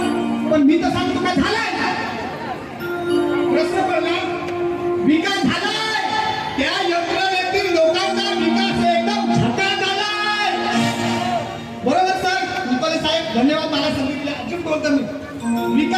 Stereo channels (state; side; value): identical; both; correlation 1.00